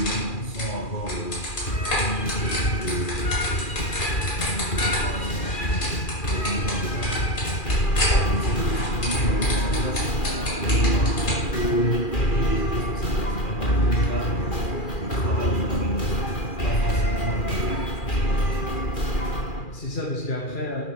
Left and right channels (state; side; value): late; right; 2.4 ms